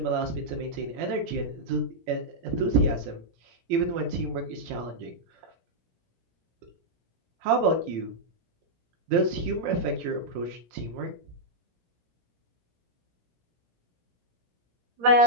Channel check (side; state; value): left; late; 18 ms